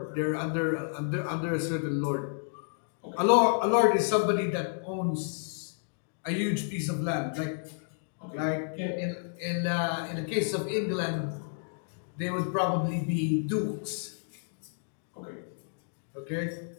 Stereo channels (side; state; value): right; silent; digital silence